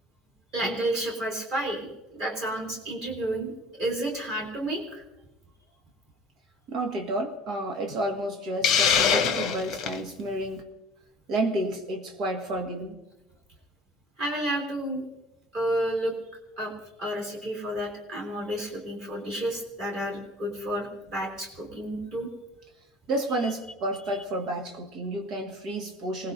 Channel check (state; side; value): normal; both; correlation 0.46